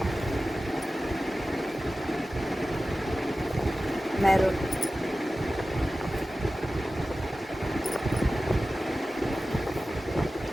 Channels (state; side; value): normal; both; correlation 0.95